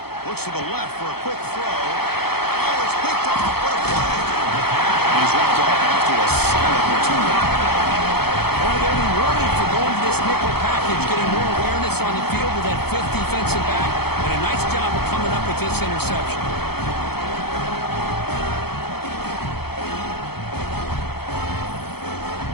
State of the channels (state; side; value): late; right; 0.96 ms